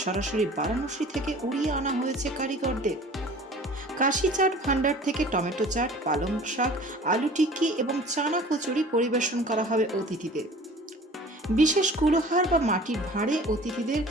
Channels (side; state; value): both; normal; correlation 0.45